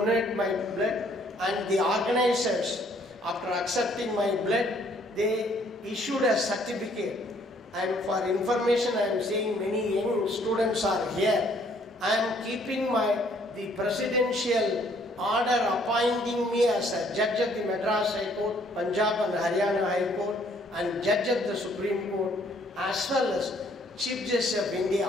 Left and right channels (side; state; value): both; normal; correlation 0.63